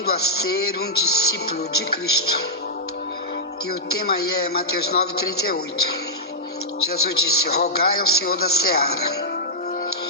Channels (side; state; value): both; normal; correlation -0.09